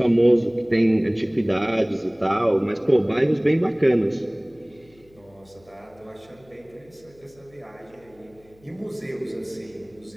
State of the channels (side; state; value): left; noise; hum, 29 dB below the sound